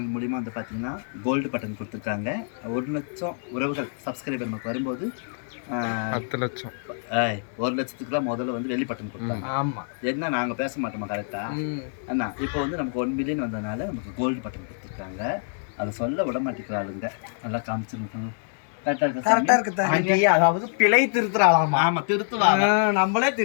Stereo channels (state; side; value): silent; right; digital silence